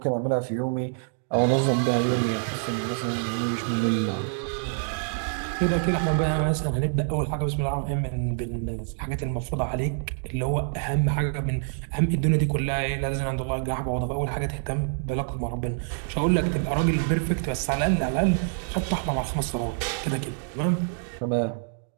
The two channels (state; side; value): silent; left; digital silence